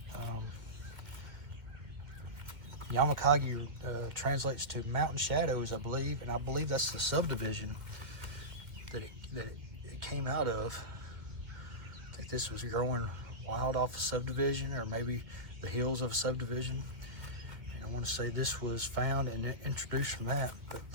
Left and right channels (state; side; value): late; left; 2.2 ms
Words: Yamakagi translates to mountain shadows, I believe, and I believe that's the subdivision that it came out of. I think this was growing wild off a subdivision, or maybe the hills of a subdivision. And I want to say this was found and introduced from that. But